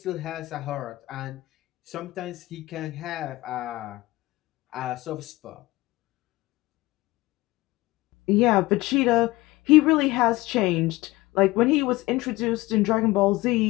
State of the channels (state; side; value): quieter; right; 19.7 dB